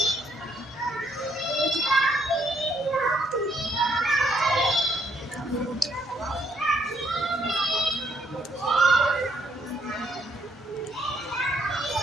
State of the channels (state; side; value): normal; both; correlation 0.71